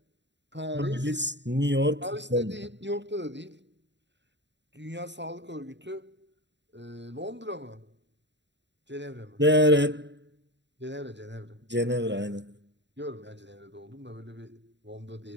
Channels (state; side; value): late; left; 0.52 ms